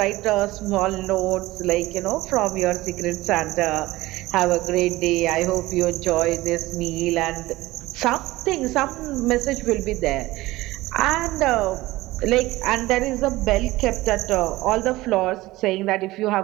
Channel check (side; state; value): left; quieter; 18.5 dB